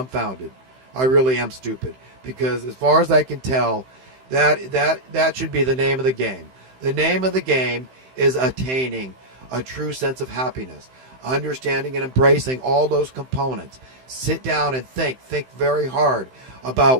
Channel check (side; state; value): left; late; 15 ms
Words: I really am stupid, because as far as I can tell, that should be the name of the game. The name of the game is attaining a true sense of happiness, understanding and embracing all those components. Sit down and think very hard about